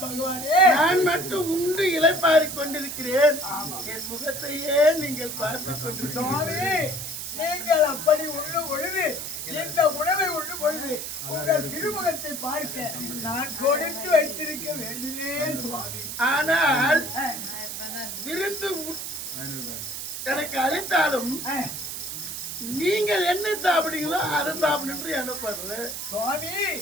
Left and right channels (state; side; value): noise; right; hiss, 6 dB below the sound